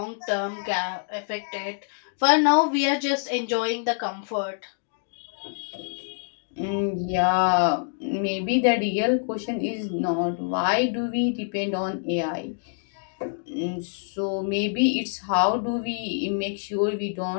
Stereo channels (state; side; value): silent; right; digital silence